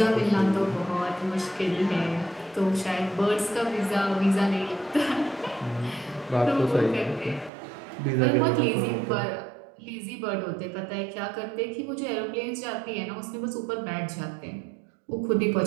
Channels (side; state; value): left; drops out; at 7.5 s